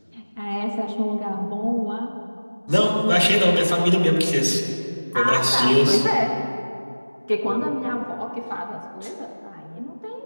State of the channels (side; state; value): both; inverted; correlation -1.00